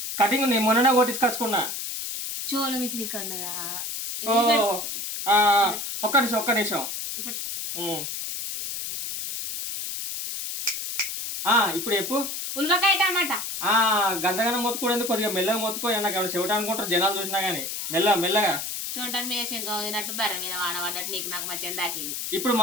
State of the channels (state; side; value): noise; left; hiss, 5 dB below the sound